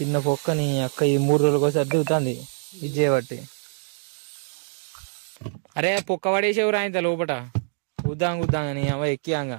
పొక్కని అక్క ఈ 3 రోజులకు ఒకసారి దిగుతుంది ఇది చేయబట్టి. అరే పొక్క పడేసేవరా ఇంత లోపట గుద్దాంగని అవ ఎక్కియాంగా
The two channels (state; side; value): silent; left; digital silence